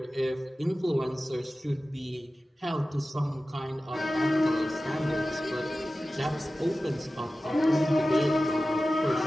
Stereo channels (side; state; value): both; normal; correlation 0.95